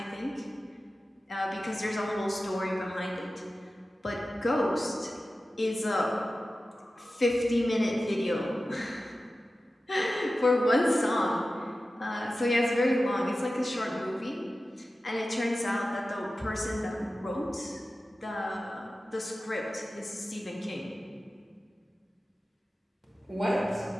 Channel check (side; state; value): both; normal; correlation 0.94